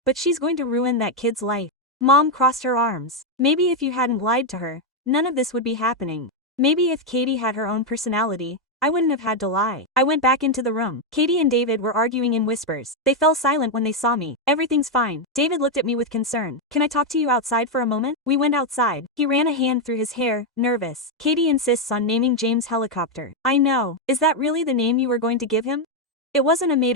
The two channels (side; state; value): both; normal; correlation 0.03